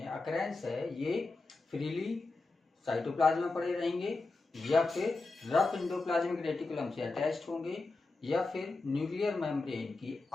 अकरेंस है, ये फ्रीली साइटोप्लाज्म में पड़े रहेंगे या फिर रफ इंडोप्लाज्मिक रेटिकुलम से अटैच्ड होंगे या फिर न्यूक्लियर मेम्ब्रेन की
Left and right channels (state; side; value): quieter; right; 3.5 dB